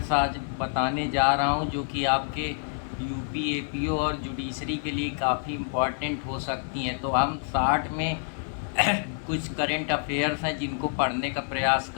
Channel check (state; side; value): silent; right; digital silence